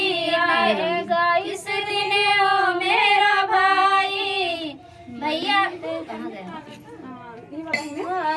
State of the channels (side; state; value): both; identical; correlation 1.00